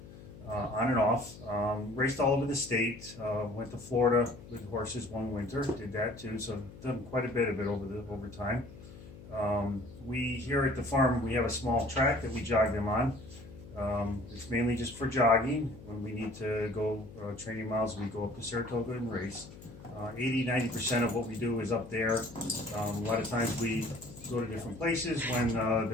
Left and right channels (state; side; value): noise; left; hum, 17 dB below the sound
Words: on and off. Raced all over the state. Went to Florida with horses one winter. Did that too. So I've done quite a bit of it over time. We here at the farm, we have a small track that we jog them on. It's mainly just for jogging. When we need to go training miles, we go up to Saratoga and race. 80–90% of what we do is up there. A lot of times we go to different places when